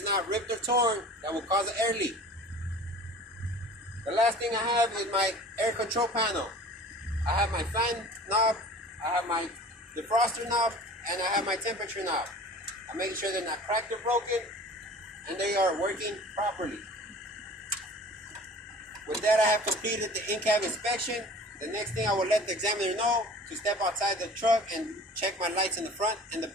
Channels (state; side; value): normal; both; correlation 0.43